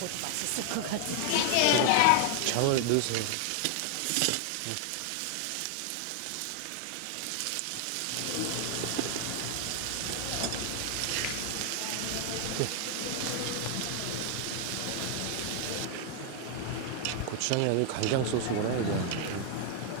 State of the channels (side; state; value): both; different; correlation 0.00